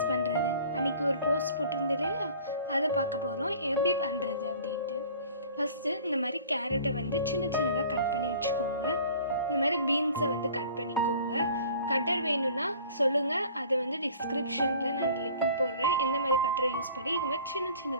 பண்ணுறது. அன்றைக்கி ஒரு போஸ்ட் போட்டிருந்தது இல்லையா, அதை பார்க்க போகிறோம் எப்படி பண்ணுறது அப்படின்ட்டு. ஃபஸ்ட்டு இந்த மாதிரி கேரட்டை சின்ன சின்னதாக கட் பண்ணி வச்சுக்கோங்க. இந்த மாதிரி பீன்ஸை கட் பண்ணிக்கோங்க. கட்டர் வேணும்னா சொல்லுங்கள், அதை டிஸ்கிரிப்ஷனில் நான் லிங்க் போடுறேன். எந்த மாதிரி கட்டரை யூஸ் பண்ணி இது மாதிரி சின்ன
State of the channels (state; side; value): inverted; both; correlation -0.48